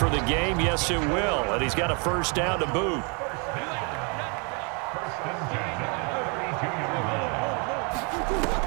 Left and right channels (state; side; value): quieter; left; 34.4 dB